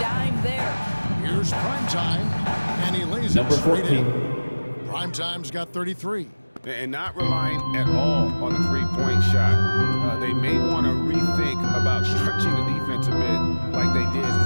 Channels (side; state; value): both; inverted; correlation -1.00